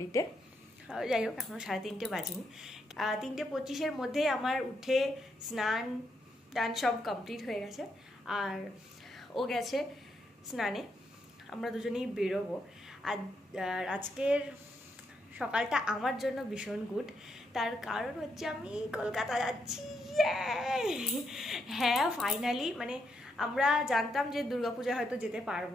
যাই হোক এখনো 3:30 বাজেনি। 3:25-এর মধ্যেই আমার উঠে স্নান টান সব কমপ্লিট হয়ে গেছে, আর ও গেছে স্নানে, আমরা দুজনেই বেরোবো। আর আজকের সকালটা আমার জন্য ভীষণ গুড, তার কারণ হচ্ছে আমি কলকাতা যাচ্ছি। হ্যাঁ ফাইনালি, মানে আমরা জানতাম যে দুর্গাপূজা হয়তো যেতে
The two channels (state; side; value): normal; both; correlation 0.79